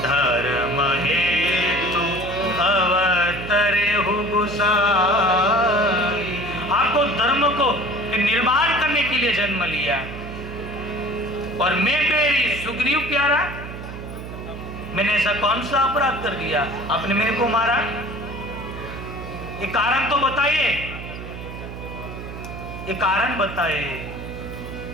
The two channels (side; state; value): right; noise; hum, 10 dB below the sound